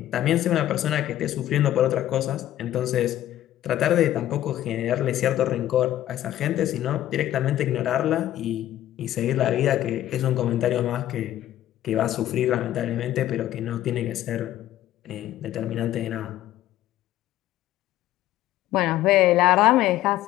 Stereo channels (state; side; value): quieter; right; 13.2 dB